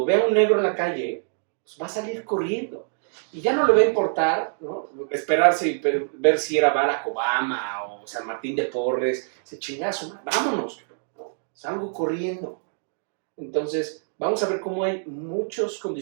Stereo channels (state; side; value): silent; left; digital silence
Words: vea a un negro en la calle, pues va a salir corriendo. Y ya no le va a importar, ¿no? Esperarse y ver si era Barack Obama o San Martín de Porres, ese chingazo, vámonos, ¿no? Salgo corriendo. Entonces, vamos a ver cómo hay muchos